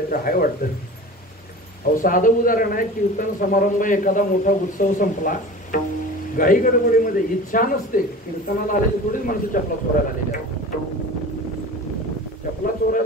आहे वाटतं. अहो साधं उदाहरण आहे, कीर्तन समारंभ एखादा मोठा उत्सव संपला, घाई गडबडीमध्ये इच्छा नसते, कीर्तनाला आलेली थोडीच माणसं चपला चोरायला आलेली आहेत. चपला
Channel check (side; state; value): both; normal; correlation 0.36